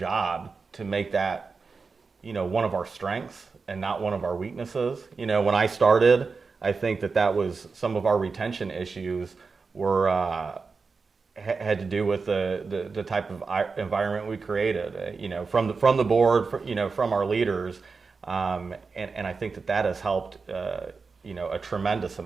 to make that, one of our strengths and not one of our weaknesses. When I started, I think that was some of our retention issues were had to do with the type of environment we created, from the board, from our leaders, and I think that has helped, a tremendous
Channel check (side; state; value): left; quieter; 4.6 dB